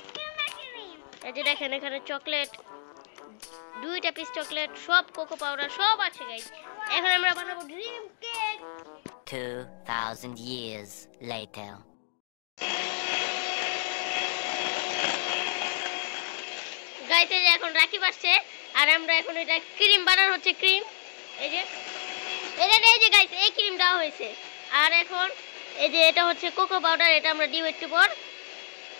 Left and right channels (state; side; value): silent; right; digital silence